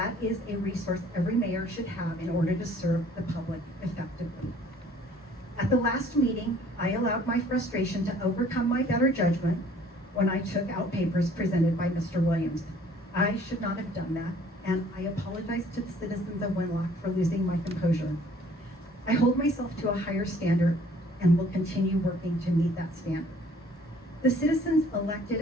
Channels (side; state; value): both; normal; correlation 0.56